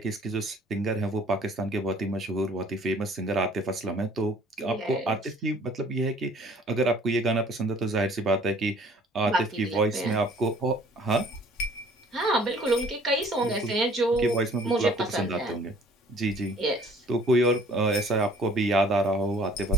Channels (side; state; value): both; normal; correlation 0.55